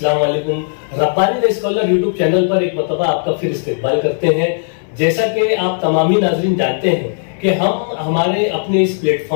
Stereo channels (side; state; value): right; silent; 62 dB below the other